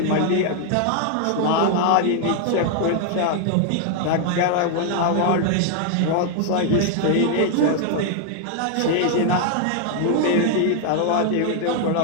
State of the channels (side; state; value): both; different; correlation 0.00